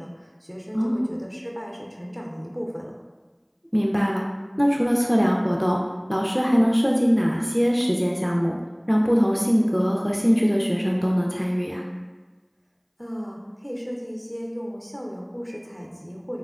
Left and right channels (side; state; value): both; identical; correlation 1.00